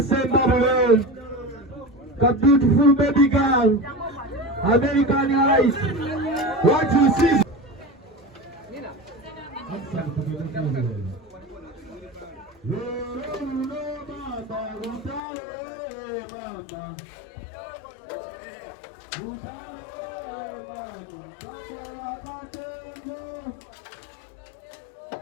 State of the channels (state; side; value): drops out; right; at 15.2 s